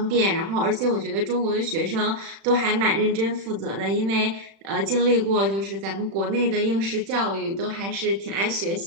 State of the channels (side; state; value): left; late; 36 ms